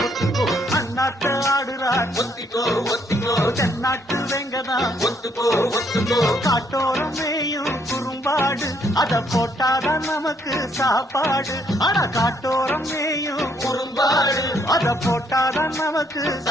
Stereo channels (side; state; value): both; normal; correlation 0.70